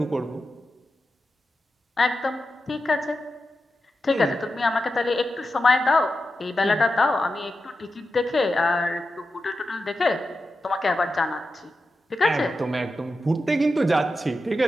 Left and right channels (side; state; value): both; normal; correlation 0.90